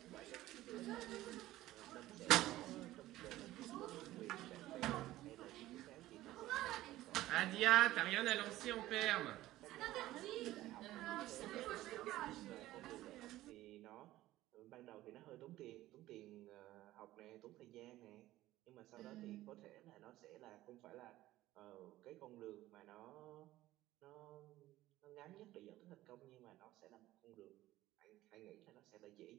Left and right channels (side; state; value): left; quieter; 15.8 dB